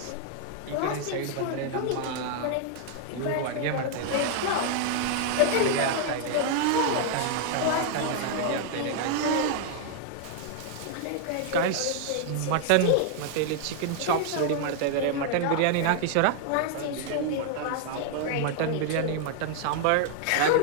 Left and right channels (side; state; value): both; different; correlation 0.00